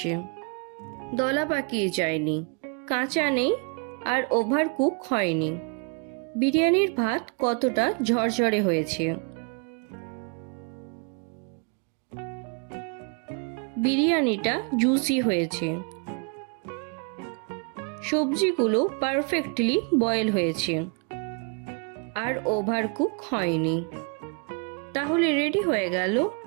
দলা পাকিয়ে যায়নি, কাঁচা নেই আর ওভার কুক হয়নি। বিরিয়ানির ভাত কতটা ঝরঝরে হয়েছে। বিরিয়ানিটা জুসি হয়েছে, সবজিগুলো পারফেক্টলি বয়েল হয়েছে আর ওভার কুক হয়নি। তাহলে রেডি হয়ে গেল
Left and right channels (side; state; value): left; quieter; 37.7 dB